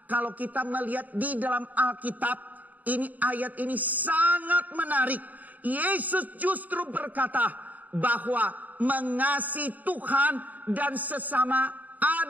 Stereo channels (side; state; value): left; late; 0.079 ms